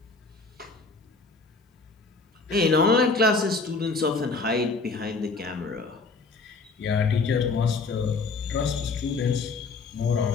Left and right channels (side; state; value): right; quieter; 4.1 dB